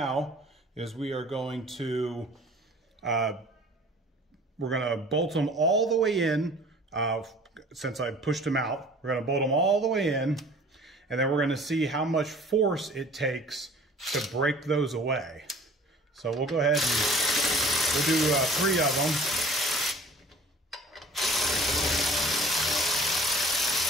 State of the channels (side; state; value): both; normal; correlation 0.49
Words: is we are going to bolt them all the way in. Since I pushed them out, we're going to bolt them all the way in, and then we're going to see how much force it takes to break those away. So we'll go ahead and we'll do 3 of them.